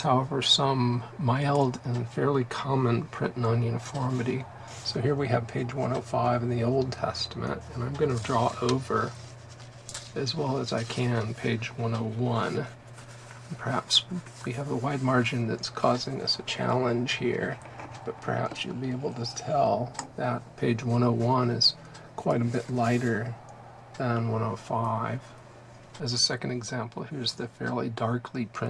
however, some mild and fairly common print non-uniformity. So here we have page 105 in the Old Testament, and I'm going to draw over, as well as I can, page 101. And perhaps we have a wide margin that's causing us a challenge here, but perhaps you'll be able to tell that page 101 is quite a bit lighter than 105. As a second example, here's the fairly darkly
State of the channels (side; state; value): both; identical; correlation 1.00